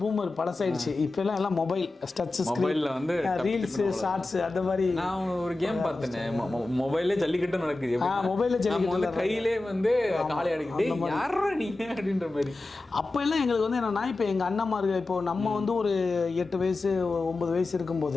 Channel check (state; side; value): quieter; right; 3.1 dB